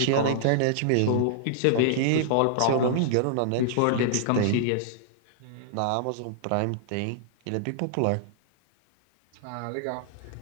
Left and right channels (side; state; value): both; different; correlation -0.01